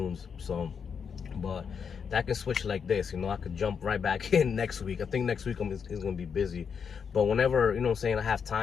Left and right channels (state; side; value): quieter; right; 6.6 dB